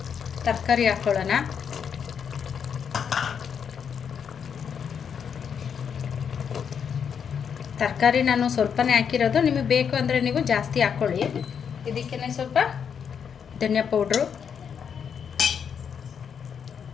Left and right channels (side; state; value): right; quieter; 7.3 dB